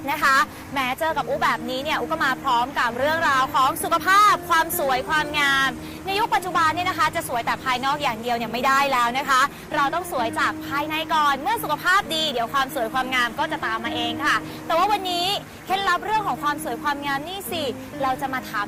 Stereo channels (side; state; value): both; identical; correlation 1.00